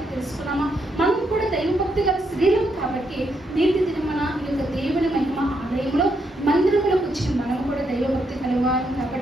తెలుసుకున్నామో మనం కూడా దైవభక్తి గల స్త్రీలం కాబట్టి నేటి దినమన ఈ యొక్క దేవుని మహిమ ఆలయంలో మందిరంలోకి వచ్చిన మనం కూడా దైవభక్తి కలవారం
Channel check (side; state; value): both; normal; correlation 0.78